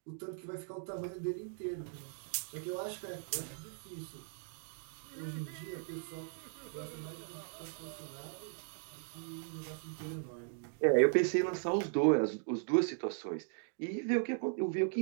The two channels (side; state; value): left; silent; digital silence